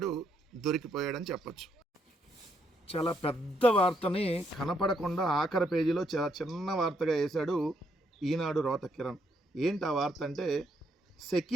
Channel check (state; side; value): normal; both; correlation 0.74